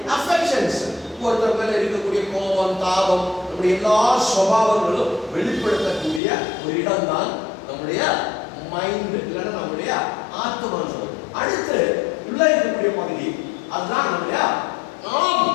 அஃபெக்ஷன்ஸ், ஒருத்தர் மேல இருக்கக்கூடிய கோபம், தாபம், நம்முடைய எல்லா சுபாவங்களும் வெளிப்படுத்தக்கூடிய ஒரு இடம் தான் நம்முடைய மைண்ட், இல்லைன்னா நம்முடைய ஆத்மான்னு சொல்றோம். அடுத்து உள்ள இருக்கக்கூடிய பகுதி அதுதான் நம்முடைய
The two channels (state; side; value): drops out; right; at 6.2 s